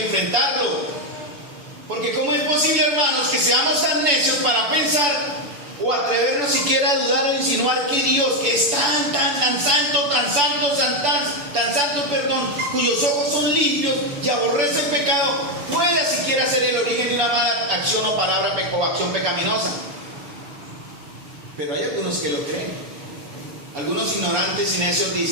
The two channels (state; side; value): late; left; 7.0 ms